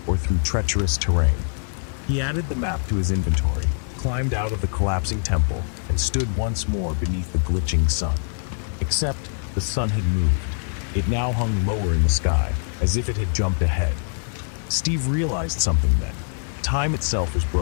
or through treacherous terrain. He added the map to his inventory, climbed out of the collapsing temple, and stood once more beneath the glitching sun. Except the sun had moved. It now hung lower in the sky, as if it had jumped ahead. Steve realized something then. Time itself was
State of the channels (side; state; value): right; silent; 63 dB below the other